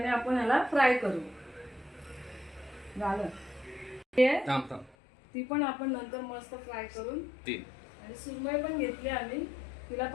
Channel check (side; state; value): right; drops out; at 5.0 s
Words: आपण ह्याला फ्राय करू। झालं ती पण आपण नंतर मस्त फ्राय करून आणि सुरमई पण घेतली आम्ही, तिला